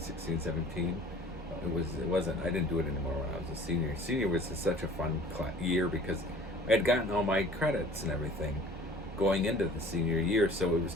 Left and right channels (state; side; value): normal; both; correlation 0.49